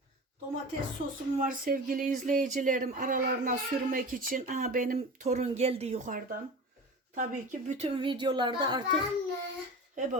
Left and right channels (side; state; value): both; normal; correlation 0.33